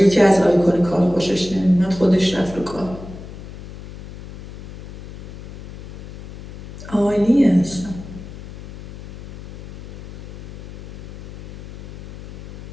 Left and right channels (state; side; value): noise; left; hum, 12 dB below the sound